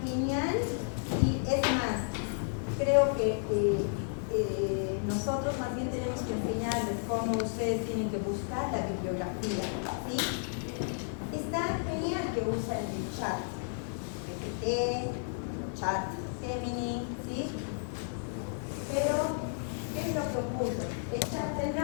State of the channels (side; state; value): right; silent; 56 dB below the other